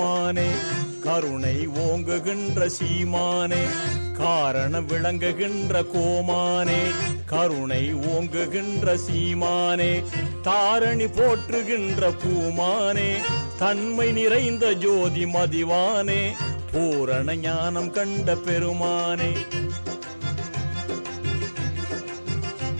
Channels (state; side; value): inverted; both; correlation -1.00